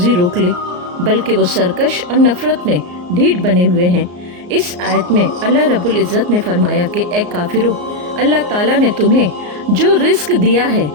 रोक ले, बल्कि वो सरकश और नफ़रत में ढीठ बने हुए हैं। इस आयत में अल्लाह रब्बुल इज़्ज़त ने फरमाया कि ए काफिरों, अल्लाह ताला ने तुम्हें जो रिस्क दिया है,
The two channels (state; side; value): late; left; 34 ms